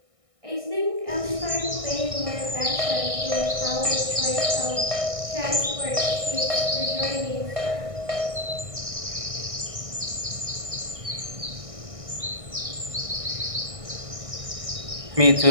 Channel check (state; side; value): late; left; 1.6 ms